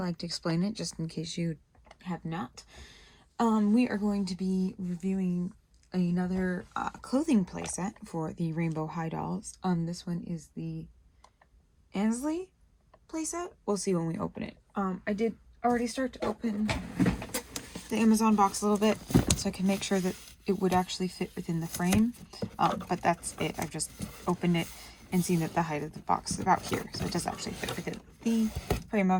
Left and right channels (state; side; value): identical; both; correlation 1.00